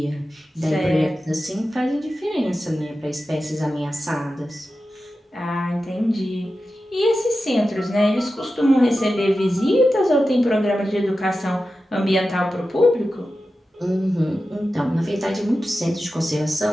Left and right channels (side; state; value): both; normal; correlation 0.92